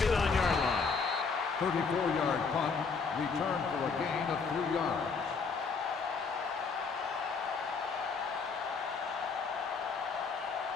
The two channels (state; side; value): quieter; right; 5.1 dB